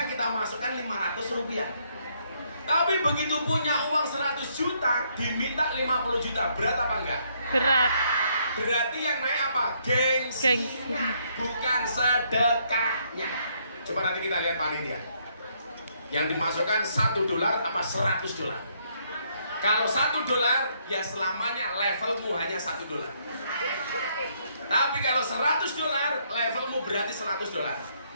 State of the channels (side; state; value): both; inverted; correlation -0.71